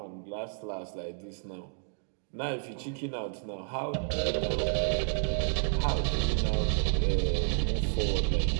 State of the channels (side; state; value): left; silent; digital silence